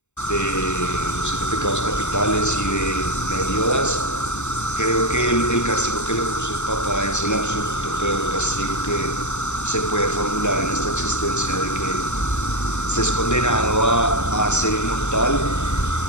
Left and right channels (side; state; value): right; late; 0.83 ms